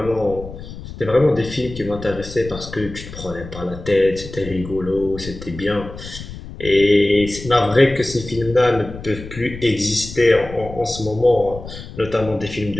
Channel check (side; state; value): left; noise; rumble, 13 dB below the sound